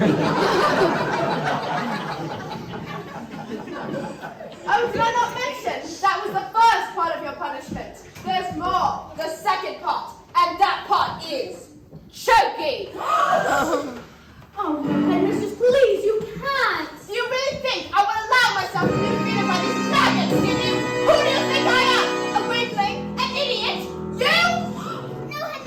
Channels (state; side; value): identical; both; correlation 1.00